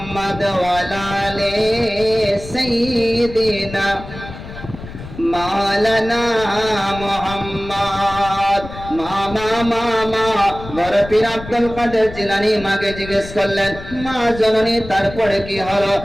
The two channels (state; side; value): noise; left; rumble, 13 dB below the sound